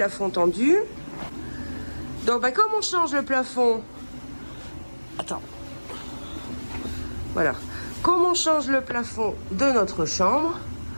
tendu. Donc, comme on change le plafond... Attends. Voilà. Comme on change le plafond de notre chambre...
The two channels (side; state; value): both; inverted; correlation -1.00